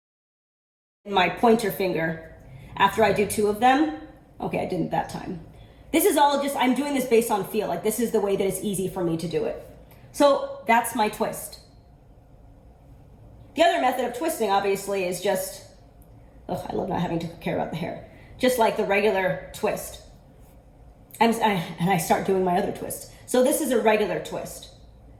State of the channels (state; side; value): identical; both; correlation 1.00